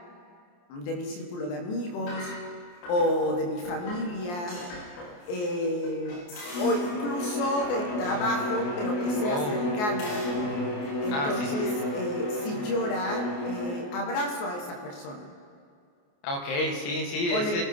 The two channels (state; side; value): late; right; 28 ms